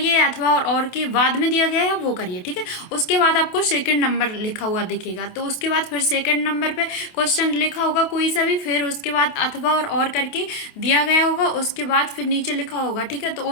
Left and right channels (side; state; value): right; late; 28 ms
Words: अथवा और के बाद में दिया गया है वो करिए, ठीक है। उसके बाद आपको सेकंड नंबर लिखा हुआ दिखेगा, तो उसके बाद फिर सेकंड नंबर पे क्वेश्चन लिखा होगा कोई सा भी, फिर उसके बाद अथवा और करके दिया गया होगा, उसके बाद फिर नीचे लिखा होगा, ठीक है। तो